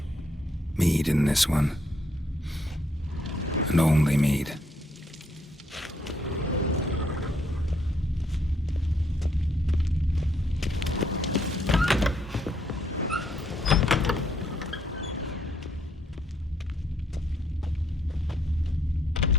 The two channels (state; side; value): normal; both; correlation 0.72